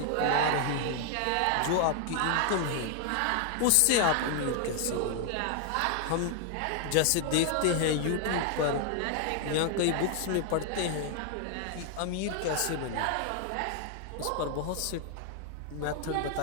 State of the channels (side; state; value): both; different; correlation 0.00